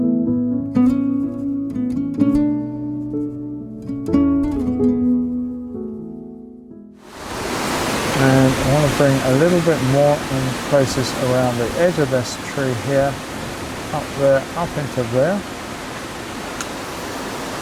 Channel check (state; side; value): identical; both; correlation 1.00